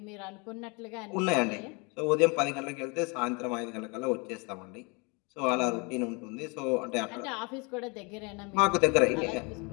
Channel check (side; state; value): right; quieter; 30.5 dB